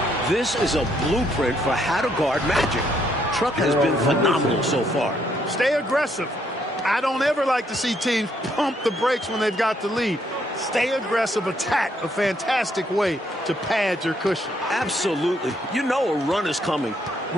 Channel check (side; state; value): both; normal; correlation 0.72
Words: This is a blueprint for how to guard Magic. Truck has been phenomenal so far. Stay aggressive. I don't ever like to see teams pump the brakes when they've got the lead. Stay aggressive, attack, a fantastic way to pad your cushion. Absolutely. You know a run is coming.